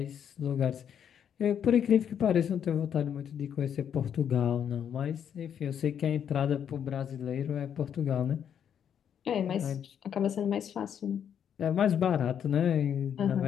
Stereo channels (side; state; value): right; quieter; 8.6 dB